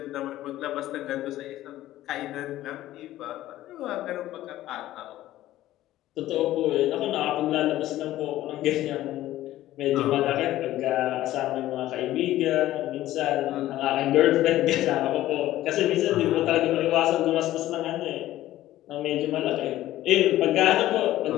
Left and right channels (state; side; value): quieter; right; 14.7 dB